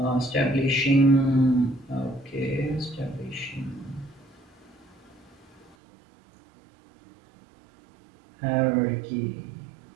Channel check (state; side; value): drops out; left; at 5.8 s